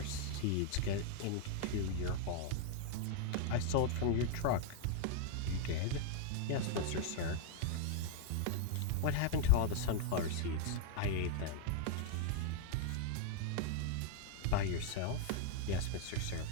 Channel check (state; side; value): different; both; correlation 0.00